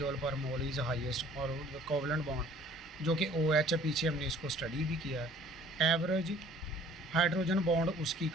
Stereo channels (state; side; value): normal; both; correlation 0.54